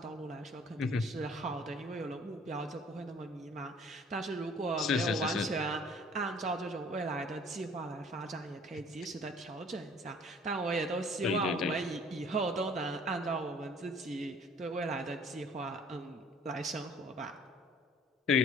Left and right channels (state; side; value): normal; both; correlation 0.53